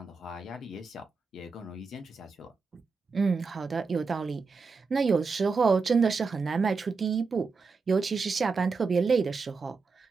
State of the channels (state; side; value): quieter; left; 4.6 dB